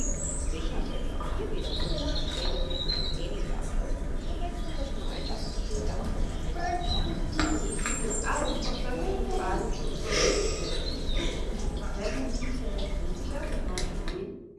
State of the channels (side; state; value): both; identical; correlation 1.00